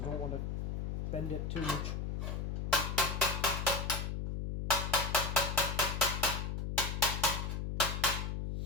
I don't want to bend it too much.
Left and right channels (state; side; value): noise; left; hum, 2 dB below the sound